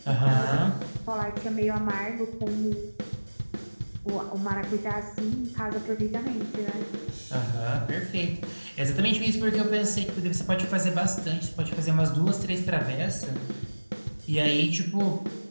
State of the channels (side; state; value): both; inverted; correlation -1.00